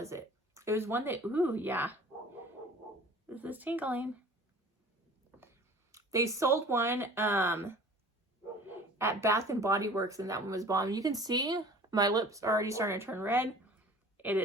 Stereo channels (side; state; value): both; normal; correlation 0.45